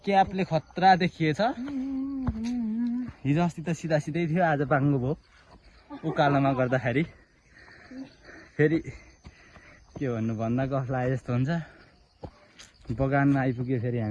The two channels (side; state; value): both; identical; correlation 1.00